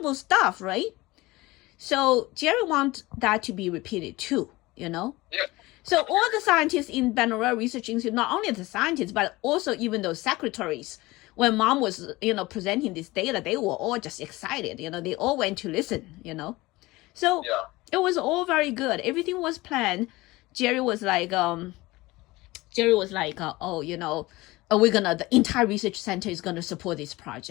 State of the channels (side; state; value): right; quieter; 20.5 dB